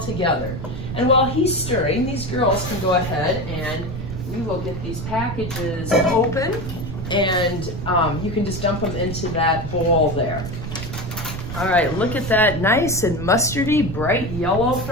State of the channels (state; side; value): noise; right; rumble, 7 dB below the sound